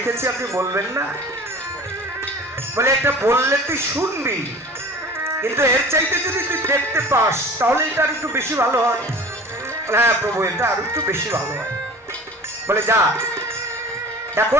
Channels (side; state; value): both; normal; correlation 0.41